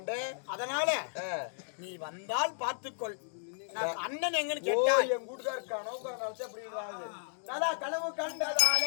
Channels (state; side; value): silent; right; digital silence